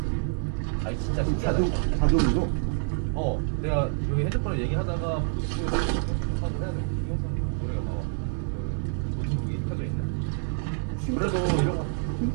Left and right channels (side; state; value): left; silent; 56 dB below the other